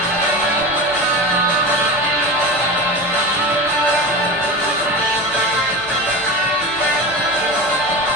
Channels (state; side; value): noise; left; hum, 24 dB below the sound